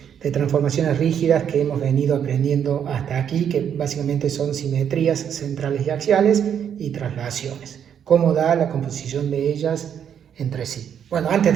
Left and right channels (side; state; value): left; quieter; 8.6 dB